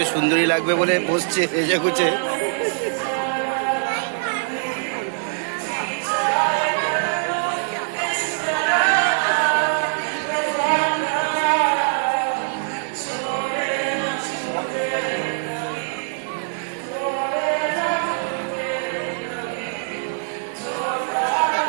সুন্দরী লাগবে বলে বসছে এসে গুছে।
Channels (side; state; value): left; silent; 64 dB below the other